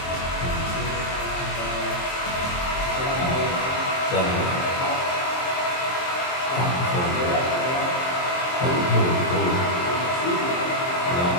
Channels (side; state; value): right; late; 23 ms